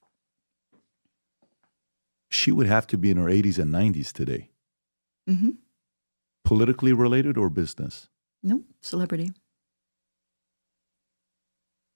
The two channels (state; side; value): inverted; both; correlation -1.00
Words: She would have to be in her 80s and 90s today. Mm-hmm. Politically related or business? No, celebrity.